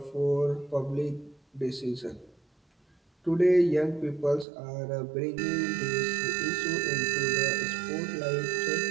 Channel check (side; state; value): left; drops out; at 4.5 s